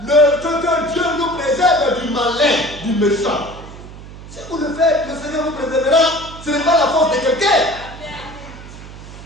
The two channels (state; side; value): noise; right; hum, 15 dB below the sound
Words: que Dieu nous préserve du malin, du méchant. Si vous le faites, le Seigneur vous préservera. Ce n'est pas la force de quelqu'un.